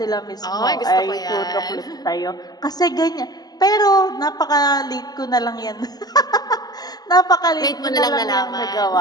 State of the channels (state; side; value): late; right; 0.19 ms